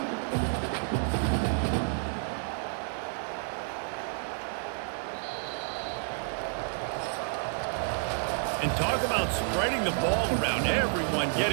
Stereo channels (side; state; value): left; silent; 58 dB below the other